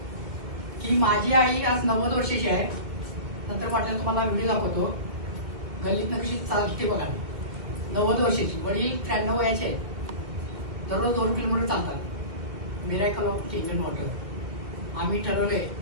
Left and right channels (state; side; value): late; left; 2.2 ms